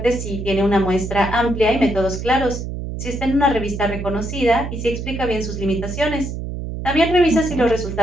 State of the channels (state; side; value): noise; right; hum, 6 dB below the sound